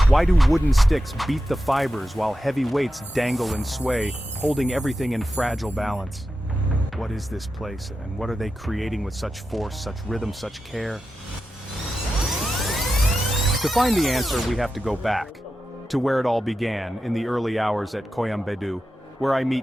Why do wooden sticks beat the fibers while heavy weights dangle and sway, holding everything in fragile balance? What is this place, and what are they creating with such force, such rhythm, such care? To find the answer, we have to go back to where it all began, in the early hours at Koyambedu, where I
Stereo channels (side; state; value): both; normal; correlation 0.91